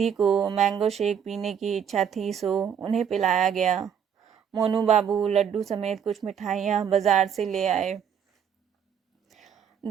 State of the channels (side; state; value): left; quieter; 8.0 dB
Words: को मैंगो शेक पीने की इच्छा थी, सो उन्हें पिलाया गया। मोनू बाबू लड्डू समेत कुछ मिठाइयाँ बाजार से ले आए।